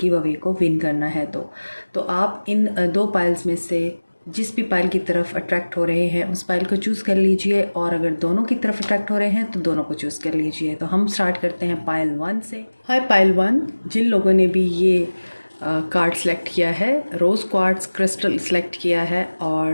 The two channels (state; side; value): inverted; both; correlation -1.00